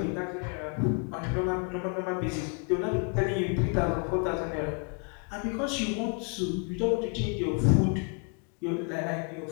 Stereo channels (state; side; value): quieter; right; 38.1 dB